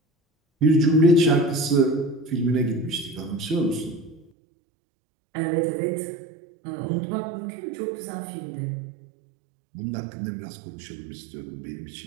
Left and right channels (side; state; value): left; drops out; at 4.3 s